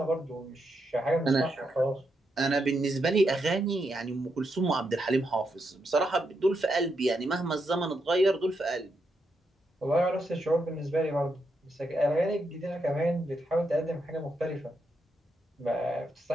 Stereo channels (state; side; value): normal; both; correlation 0.82